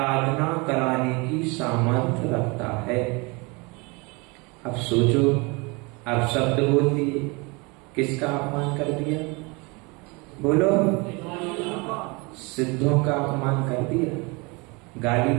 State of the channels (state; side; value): quieter; left; 28.0 dB